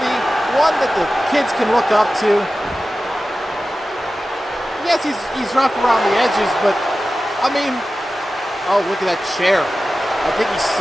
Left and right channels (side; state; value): both; normal; correlation 0.94